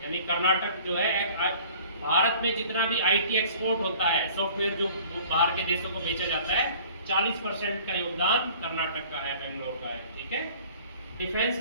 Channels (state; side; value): inverted; both; correlation -0.49